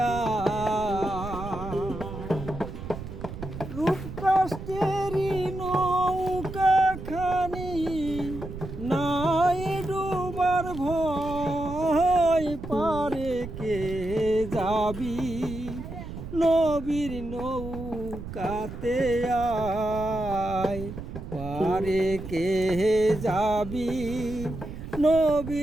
রূপ কষ্টেরই নৌকা খানি নাই ডুবার ভয় পারে কে যাবি নবীর নৌকাতে আয় পারে কে যাবি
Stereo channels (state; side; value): noise; right; rumble, 9 dB below the sound